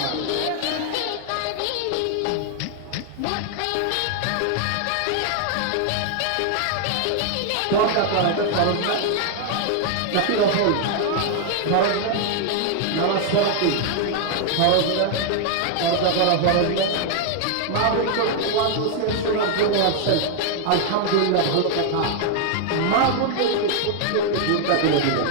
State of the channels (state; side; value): different; both; correlation 0.00